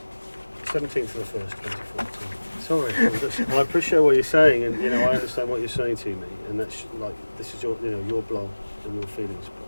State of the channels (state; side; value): inverted; both; correlation -1.00